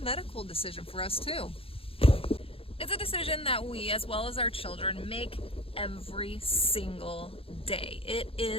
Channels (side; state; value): right; late; 0.27 ms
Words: medical decision for us too. It's a decision that we, as well as our children, make every single day. It